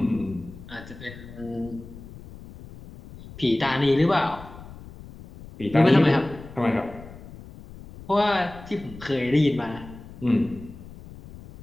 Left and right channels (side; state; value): left; noise; rumble, 16 dB below the sound